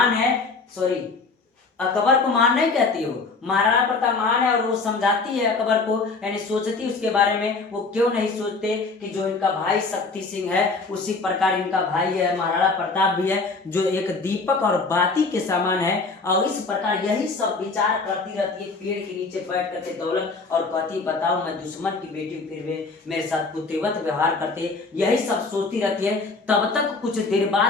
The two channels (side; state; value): right; quieter; 4.0 dB